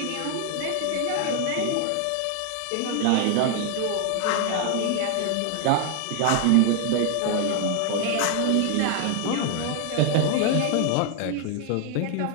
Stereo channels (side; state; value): both; different; correlation 0.00